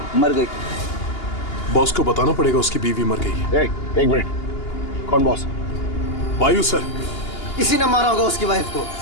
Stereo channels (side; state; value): right; late; 2.8 ms